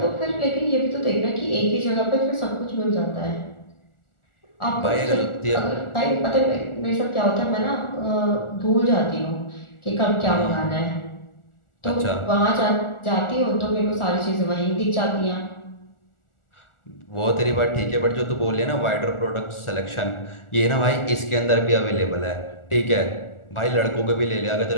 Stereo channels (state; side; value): late; right; 1.4 ms